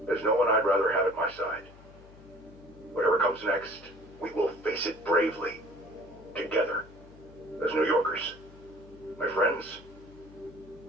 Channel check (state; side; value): noise; left; hum, 21 dB below the sound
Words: There's no one I'd rather have at my side. Whatever comes next, we will face it bravely. Together. As New Yorkers. My friends,